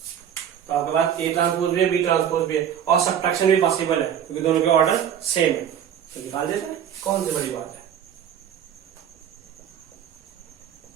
तो आपके पास ए ट्रांसपोज भी है, बी ट्रांसपोज भी है, और सब्ट्रैक्शन भी पॉसिबल है क्योंकि दोनों के ऑर्डर सेम है। तो निकाल देते हैं, कौन सी बड़ी बात है।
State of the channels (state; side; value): quieter; left; 9.2 dB